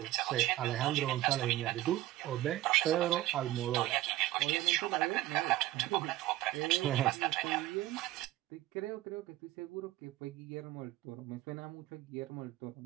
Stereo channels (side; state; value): left; quieter; 15.7 dB